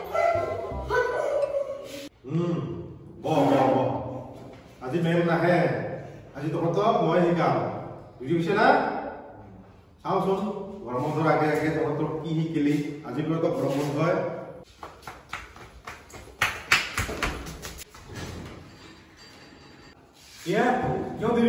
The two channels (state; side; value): identical; both; correlation 1.00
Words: আজি ma'am নাহে আজি তহঁতক মই শিকাম বুজি পাইছে না চাওচোন গৰম বন্ধৰ আগে আগে তহঁতক কি শিকিলি আজি পৰা তো গৰম বন্ধ হয় কিয়